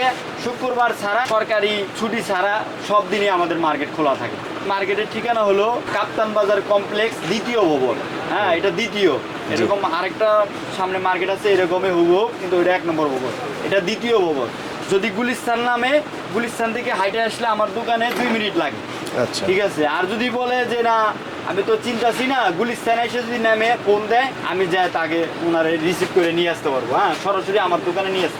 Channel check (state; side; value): identical; both; correlation 1.00